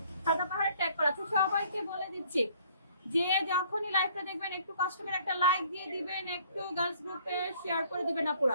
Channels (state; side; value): inverted; both; correlation -0.59